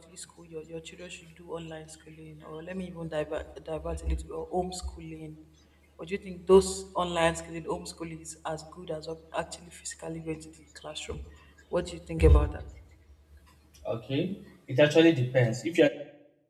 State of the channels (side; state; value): both; identical; correlation 1.00